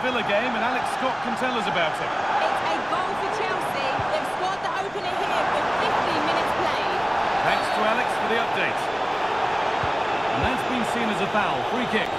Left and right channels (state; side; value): noise; left; rumble, 28 dB below the sound